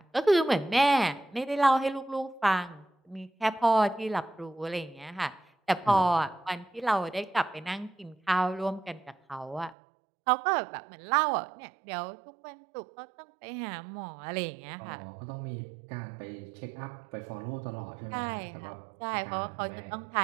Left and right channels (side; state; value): left; drops out; at 9.8 s